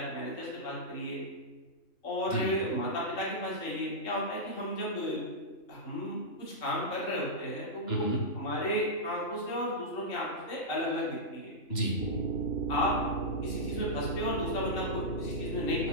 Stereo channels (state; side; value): late; right; 2.9 ms